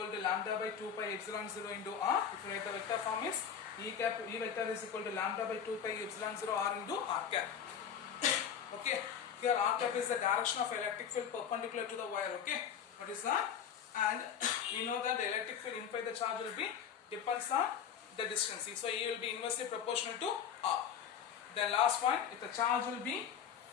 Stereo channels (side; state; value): right; quieter; 8.1 dB